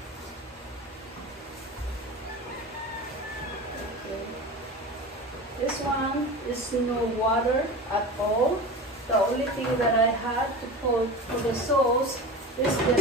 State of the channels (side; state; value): both; normal; correlation 0.30